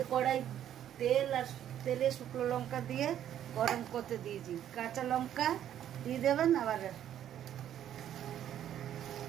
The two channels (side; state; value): left; quieter; 10.7 dB